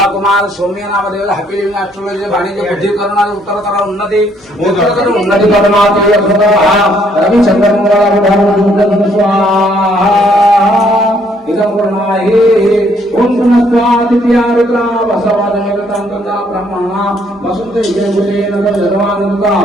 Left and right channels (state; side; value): normal; both; correlation 0.67